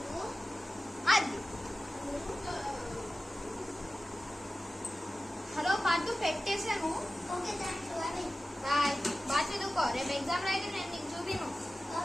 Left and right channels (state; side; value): normal; both; correlation 0.95